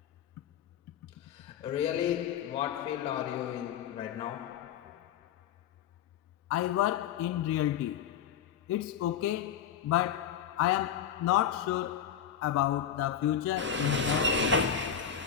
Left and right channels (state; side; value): quieter; right; 8.5 dB